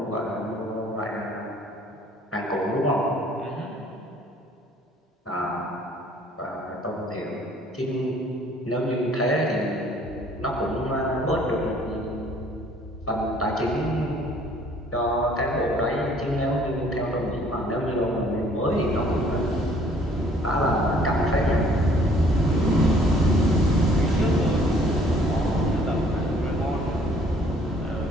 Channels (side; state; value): both; normal; correlation 0.58